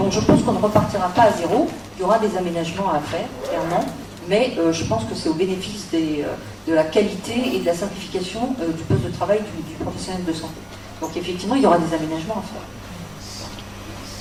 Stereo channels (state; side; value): identical; both; correlation 1.00